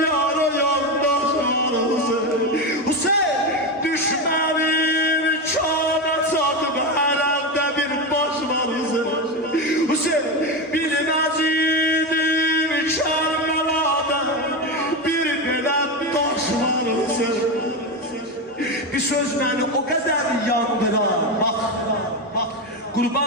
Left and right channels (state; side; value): normal; both; correlation 0.15